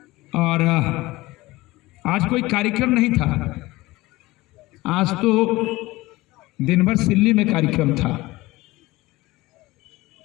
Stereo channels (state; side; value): quieter; right; 19.7 dB